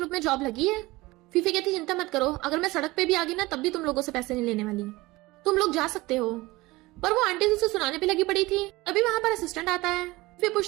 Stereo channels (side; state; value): left; quieter; 20.7 dB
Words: में जॉब लगी है। फीफे कहती चिंता मत करो, अगर मैं सड़क पे भी आ गई ना तब भी तुम लोगों से पैसे नहीं लेने वाली, तुम लोग जा सकते हो। पर वो आंटी उसे सुनाने पे लगी पड़ी थी, तभी वहां पर असिस्टेंट आता है। फिर